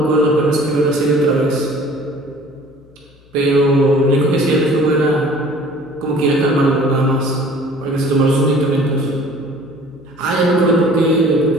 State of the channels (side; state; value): left; noise; hum, 29 dB below the sound